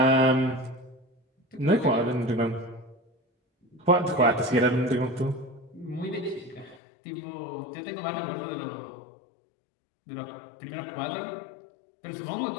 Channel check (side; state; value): right; drops out; at 6.8 s